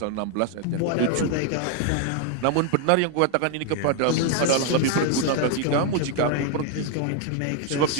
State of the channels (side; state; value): both; different; correlation 0.00